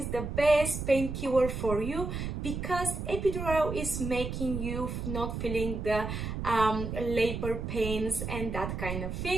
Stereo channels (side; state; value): right; noise; rumble, 4 dB below the sound